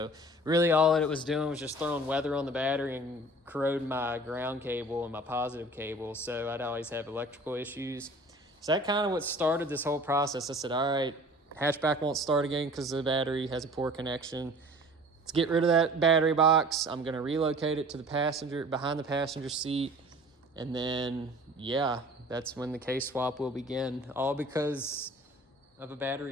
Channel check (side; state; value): both; normal; correlation 0.46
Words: really all that it was doing was just throwing weather on the battery and corroding my ground cable and my positive cable. So I'd always have electrical issues. So that kind of what started this whole process. I said, all right, hatchback won't start again because the battery has a poor connection. Let's get rid of that battery box. I'm gonna relocate it to the passenger, behind the passenger seat. And then, yeah, that's when the K-swap will begin, all because of a